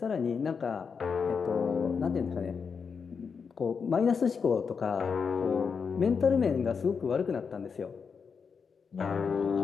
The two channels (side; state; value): right; quieter; 5.9 dB